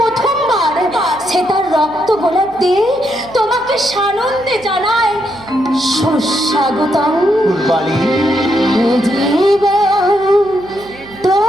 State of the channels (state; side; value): noise; right; hum, 21 dB below the sound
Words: সে তার রক্ত গোলাপ দিয়ে তোমাকে সানন্দে জানায় সুস্বাগতম। ফুলবাড়ি, জীবন